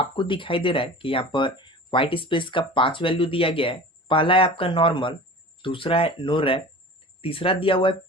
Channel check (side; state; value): both; normal; correlation 0.38